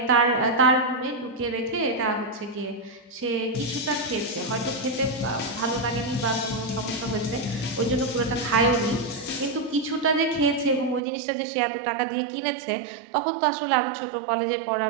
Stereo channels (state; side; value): drops out; left; at 11.0 s